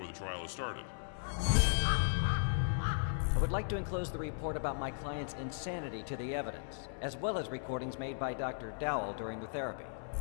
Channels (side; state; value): right; silent; 53 dB below the other